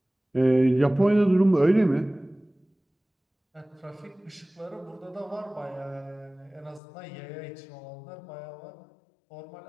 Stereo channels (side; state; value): right; drops out; at 6.8 s